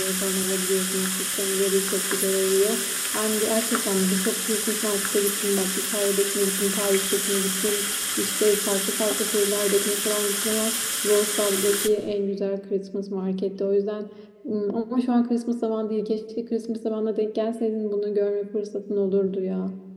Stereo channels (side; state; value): both; identical; correlation 1.00